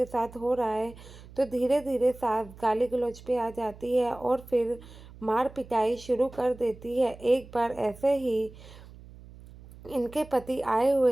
साथ हो रहा है, तो धीरे धीरे सास गाली गलौज पे आ जाती है और फिर मार पिटाई शुरू कर देती है। एक बार ऐसे ही इनके पति आए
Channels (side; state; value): right; noise; hum, 19 dB below the sound